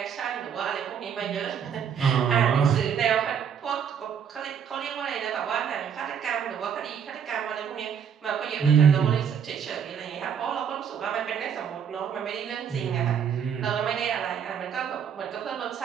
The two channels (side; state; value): left; quieter; 7.7 dB